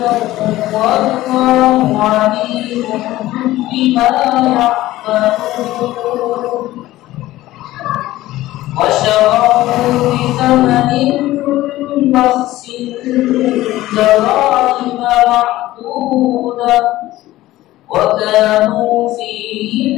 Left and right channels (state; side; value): quieter; right; 16.1 dB